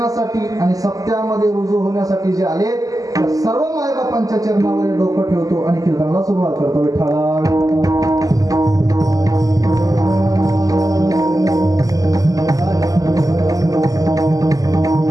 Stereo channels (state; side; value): late; left; 0.17 ms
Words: आणि सत्यामध्ये रुजू होण्यासाठी जे आले त्या सर्व मायबापांच्या चरणावर डोकं ठेवतो आणि कीर्तनाला सुरुवात करतो. विठ्ठला